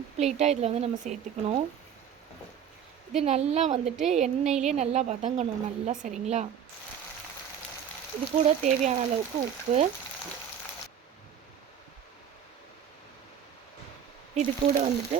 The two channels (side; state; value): left; quieter; 8.5 dB